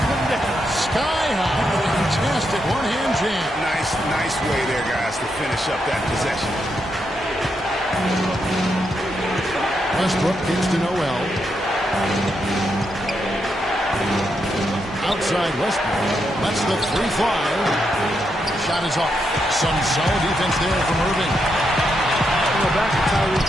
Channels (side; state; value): both; normal; correlation 0.82